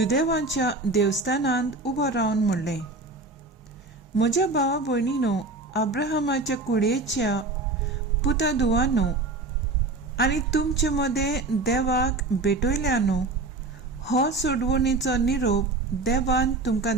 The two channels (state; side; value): quieter; left; 3.4 dB